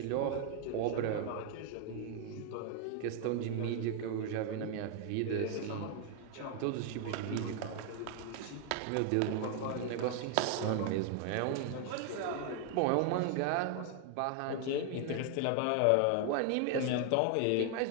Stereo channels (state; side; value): different; both; correlation 0.00